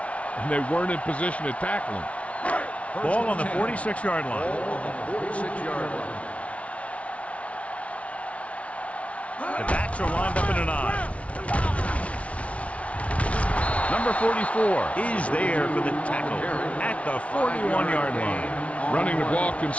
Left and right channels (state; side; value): late; right; 0.064 ms